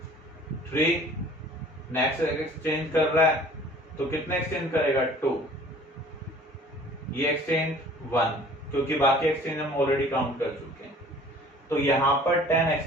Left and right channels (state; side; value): normal; both; correlation 0.50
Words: 3, नेक्स्ट एक्सचेंज कर रहा है तो कितने एक्सचेंज करेगा? 2। ये एक्सचेंज 1, क्योंकि बाकी एक्सचेंज हम ऑलरेडी काउंट कर चुके हैं। तो यहां पर 10